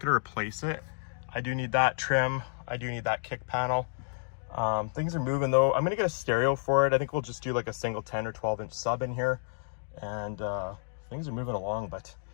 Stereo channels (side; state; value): right; silent; digital silence